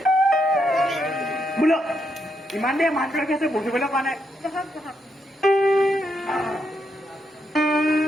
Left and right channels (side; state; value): both; normal; correlation 0.80